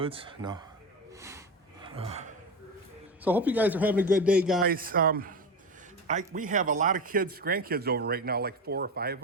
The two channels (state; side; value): normal; both; correlation 0.22